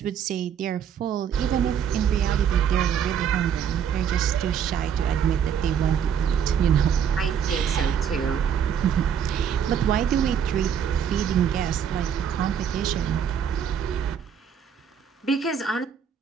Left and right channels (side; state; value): left; quieter; 8.1 dB